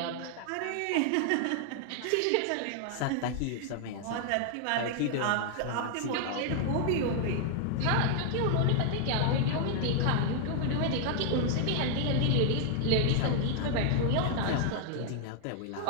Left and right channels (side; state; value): both; different; correlation 0.00